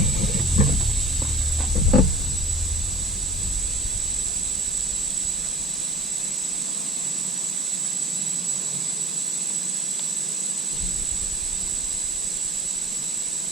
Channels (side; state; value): both; normal; correlation 0.45